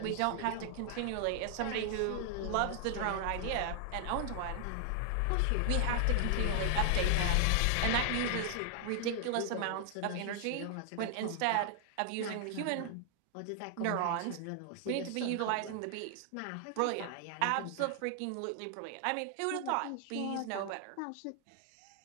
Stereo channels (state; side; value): different; both; correlation 0.00